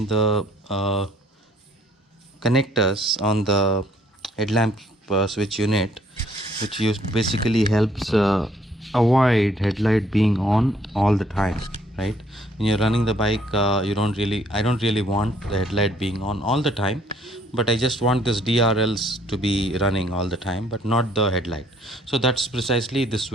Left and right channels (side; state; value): both; normal; correlation 0.64